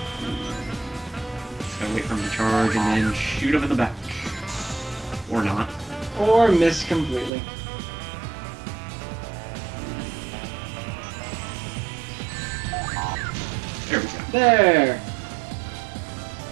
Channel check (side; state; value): left; drops out; at 7.3 s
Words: Just gotta wait for him to charge and then shoot him in the back. Or not. Or miss completely. There we go. There!